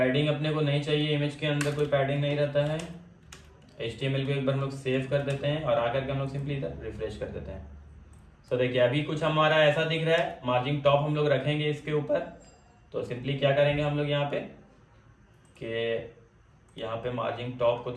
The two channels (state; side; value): identical; both; correlation 1.00